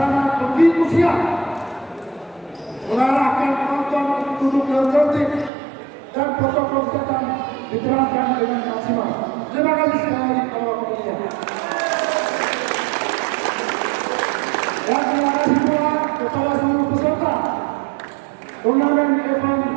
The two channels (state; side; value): drops out; left; at 5.5 s